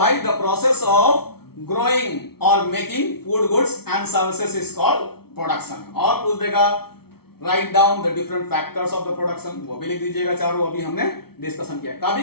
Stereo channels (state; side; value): late; right; 0.95 ms